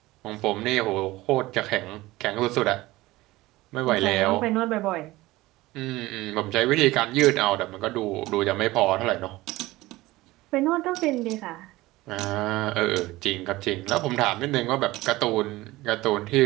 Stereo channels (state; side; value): quieter; left; 18.8 dB